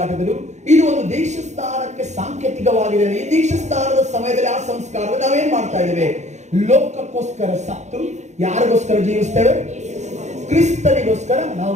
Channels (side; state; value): left; late; 0.33 ms